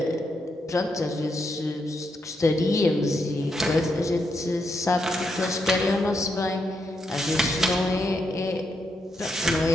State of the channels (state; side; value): normal; both; correlation 0.81